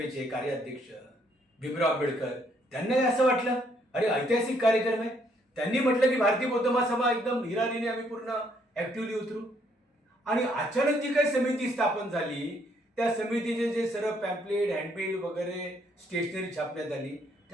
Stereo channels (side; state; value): both; normal; correlation 0.69